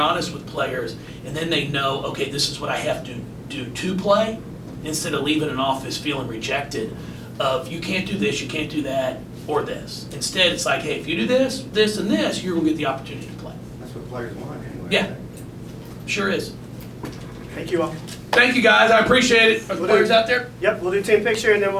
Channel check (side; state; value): both; identical; correlation 1.00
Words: honest with players, and then they know, okay, this is what I have to do to play, instead of leaving an office feeling rejected of you can't do this, you can't do that, or this. Instead, it's like, hey, if you do this, this, and this, you're going to get the opportunity to play. That's what players want anyway. Yeah, sure is. Thank you all. Thank you, guys. I appreciate it. Are the players out there? Yep, we'll do team picture and then